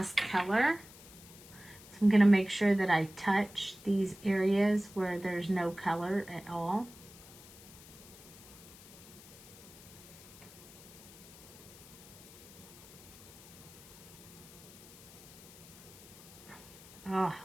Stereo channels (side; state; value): left; noise; hiss, 19 dB below the sound